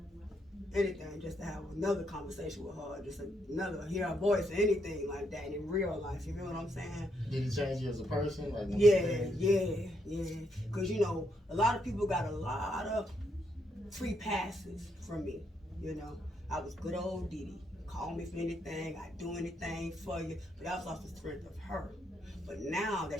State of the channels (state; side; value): normal; both; correlation 0.76